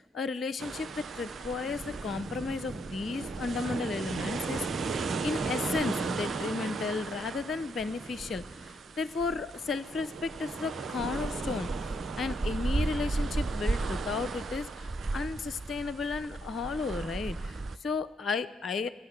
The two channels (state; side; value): normal; both; correlation 0.75